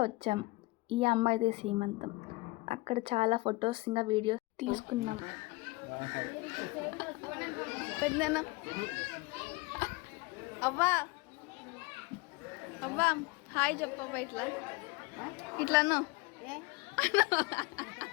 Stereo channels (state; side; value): quieter; right; 23.4 dB